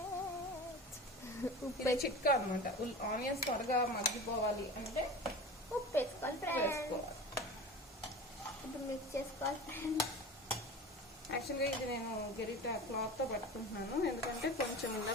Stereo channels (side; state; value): both; normal; correlation 0.34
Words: ఉప్పు చిట్కా అనమాట. ఆనియన్స్ త్వరగా మగ్గిపోవాలి అంటే ఉప్పు వేసుకోవాలి. ఇప్పుడు మిక్స్ చేసుకోవాలి. యాక్చువల్గా ఇది నేను గరిట క్లాత్తో పట్టుకుంటున్నాను, ఎందుకంటే కొంచెం ఇలా